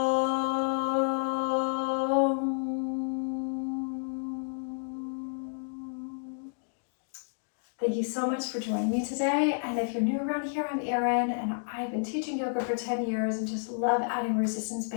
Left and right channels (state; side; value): silent; right; digital silence